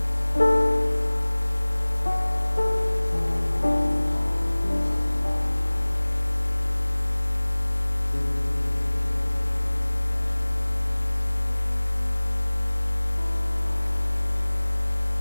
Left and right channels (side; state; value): both; inverted; correlation -1.00